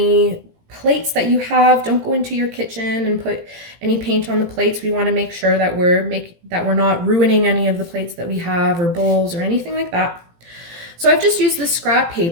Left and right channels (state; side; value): late; left; 18 ms